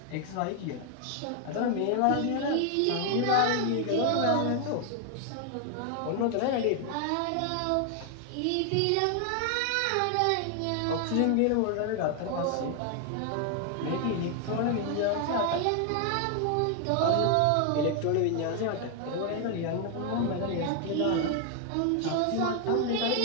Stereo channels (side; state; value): both; different; correlation 0.00